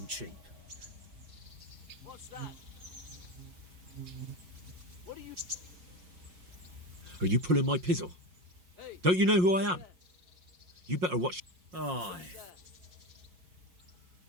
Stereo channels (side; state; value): left; late; 5.6 ms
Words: cheap. What's that? What are you... Are you pulling my pizzle? Don't you know who I am? You better watch. Aye.